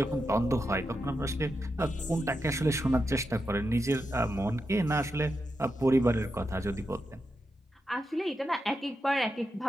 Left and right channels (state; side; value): normal; both; correlation 0.87